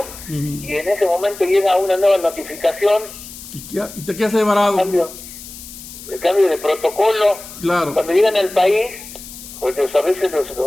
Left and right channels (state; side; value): noise; left; hiss, 15 dB below the sound